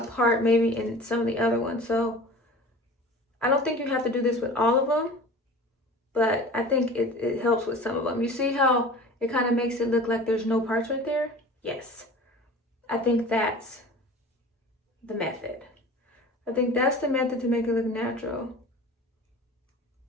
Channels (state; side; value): normal; both; correlation 0.40